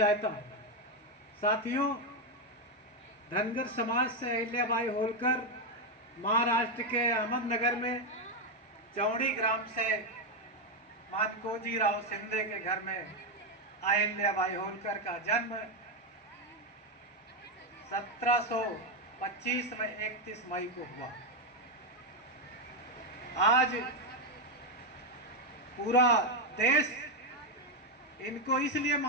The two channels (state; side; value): normal; both; correlation 0.05